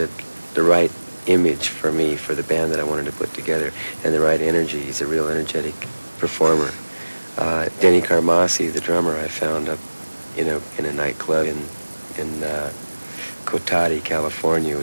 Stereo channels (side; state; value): both; inverted; correlation -1.00